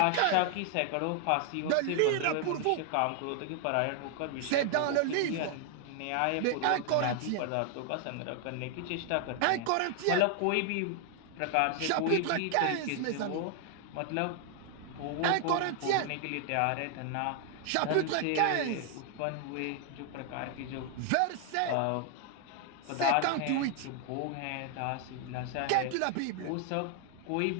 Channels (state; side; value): different; both; correlation 0.00